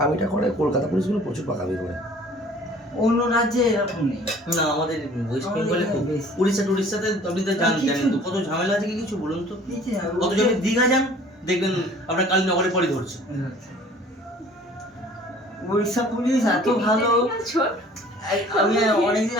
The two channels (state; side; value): normal; both; correlation 0.51